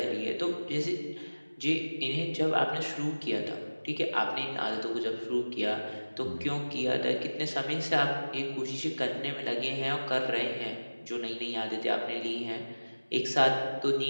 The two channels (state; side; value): inverted; both; correlation -1.00